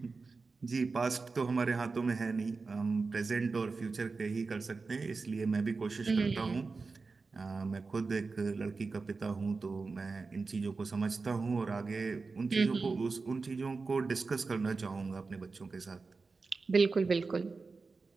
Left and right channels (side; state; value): left; quieter; 4.2 dB